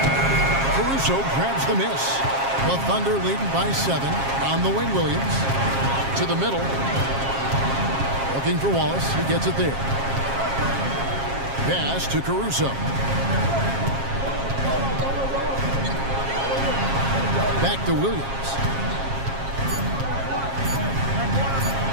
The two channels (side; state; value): left; late; 7.4 ms